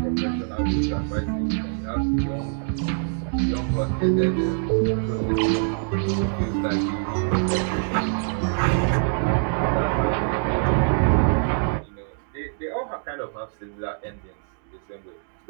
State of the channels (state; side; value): silent; left; 62 dB below the other